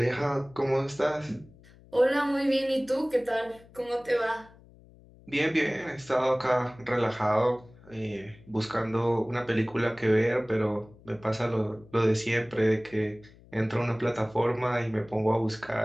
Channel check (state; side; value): noise; left; hum, 24 dB below the sound